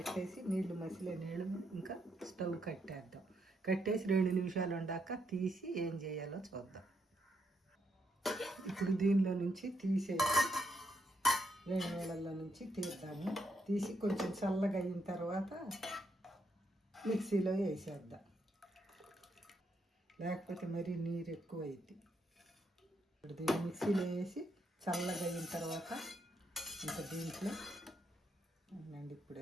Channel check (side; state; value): both; normal; correlation 0.78